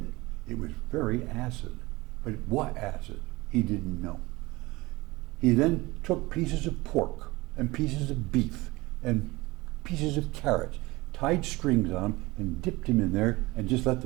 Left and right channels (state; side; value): quieter; left; 21.3 dB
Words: It was very acid. But what acid? He didn't know. He then took pieces of pork and pieces of beef and pieces of carrots, tied strings on them and dipped him in there and just let